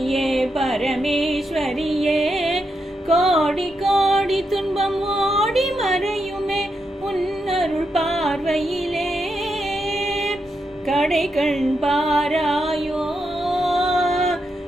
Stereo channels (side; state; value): both; normal; correlation 0.83